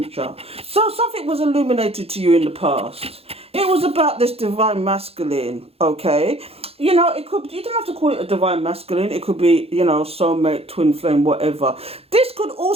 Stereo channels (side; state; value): left; late; 0.29 ms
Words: So something was illuminated to you in the past. It was about this divine masculine, okay? You know, it could, you don't have to call it a divine masculine. It could be, you know, soulmate, twin flame, whatever. This could